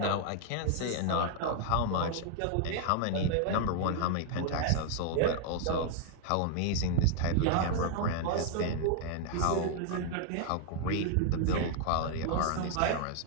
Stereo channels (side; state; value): both; different; correlation 0.00